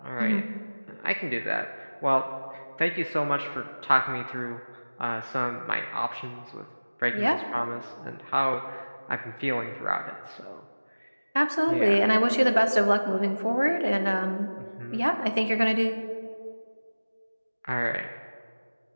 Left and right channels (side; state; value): both; inverted; correlation -1.00